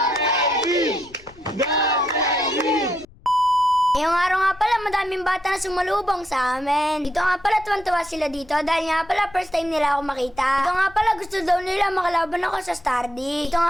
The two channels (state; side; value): noise; left; rumble, 25 dB below the sound